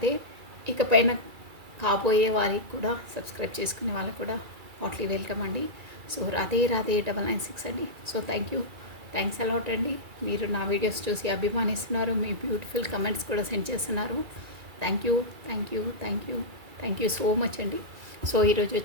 ఇకపైన కాబోయే వారికి కూడా సబ్స్క్రైబ్ చేసుకునే వాళ్ళకి కూడా హాట్లీ వెల్కమ్ అండి. సో రాధే రాధే 996 అండి. సో థ్యాంక్స్ అలాట్ అండి. మీరు నా వీడియోస్ చూసి అభిమానిస్తున్నారు, మీ బ్యూటిఫుల్ కమెంట్స్ కూడా సెండ్ చేస్తున్నారు. థ్యాంక్ యూ సో మచ్ అండి. సో ఈరోజు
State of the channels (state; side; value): late; left; 2.3 ms